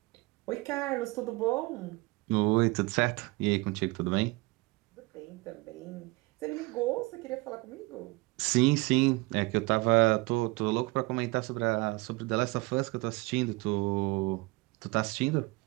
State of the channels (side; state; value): left; quieter; 23.6 dB